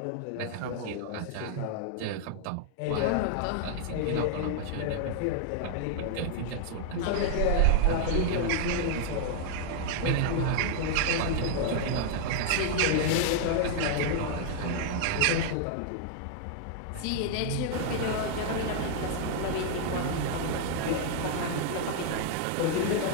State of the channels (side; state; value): both; different; correlation -0.01